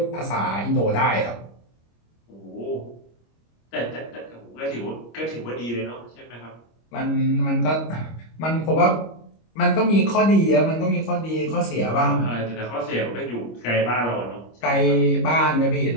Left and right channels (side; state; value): right; late; 25 ms